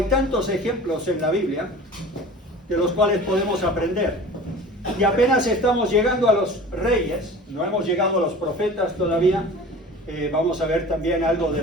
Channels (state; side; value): normal; both; correlation 0.40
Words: tantos ejemplos en la Biblia de los cuales podemos aprender. Y apenas estamos llegando a los reyes, no hemos llegado a los profetas todavía. Vamos a ver también algo